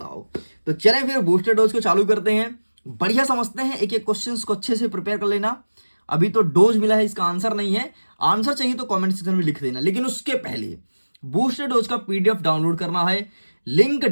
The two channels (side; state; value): both; inverted; correlation -1.00